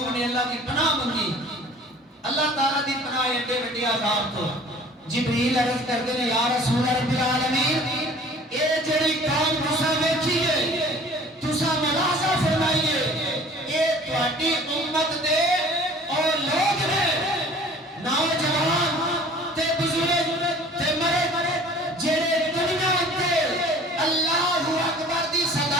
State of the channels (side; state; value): both; normal; correlation 0.48